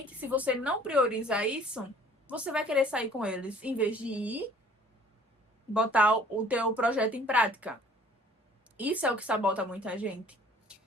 se você não priorizar isso, você vai querer sair com eles, em vez de ir botar o teu projeto em prática. Isso é o que sabota muita gente.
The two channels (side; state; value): both; normal; correlation 0.54